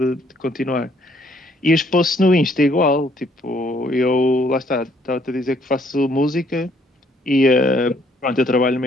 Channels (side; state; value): both; normal; correlation 0.66